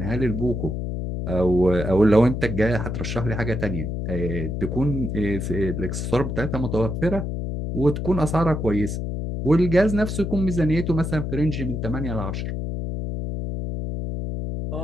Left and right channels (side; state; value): left; noise; hum, 3 dB below the sound